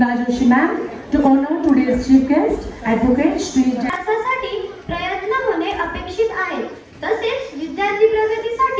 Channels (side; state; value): both; identical; correlation 1.00